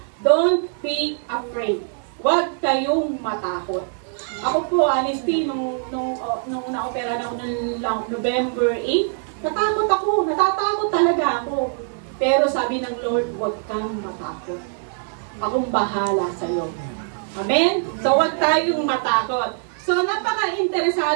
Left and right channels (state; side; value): silent; left; 64 dB below the other